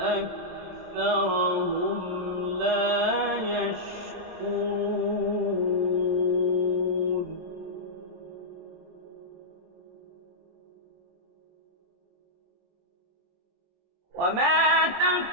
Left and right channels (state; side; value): late; left; 23 ms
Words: أكثرهم لا يشكرون وما